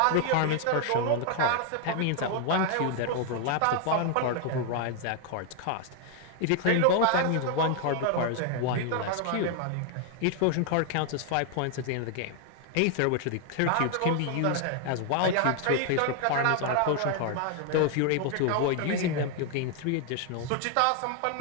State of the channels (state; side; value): different; both; correlation 0.00